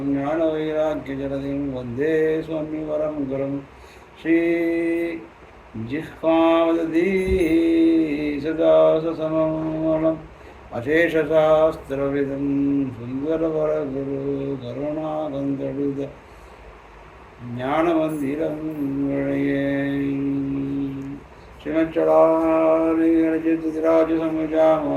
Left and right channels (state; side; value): identical; both; correlation 1.00